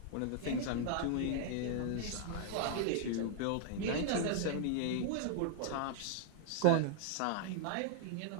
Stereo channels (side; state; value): both; different; correlation 0.00